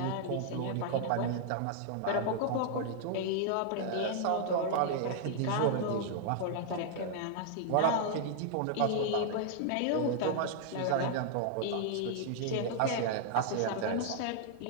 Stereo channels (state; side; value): different; both; correlation -0.01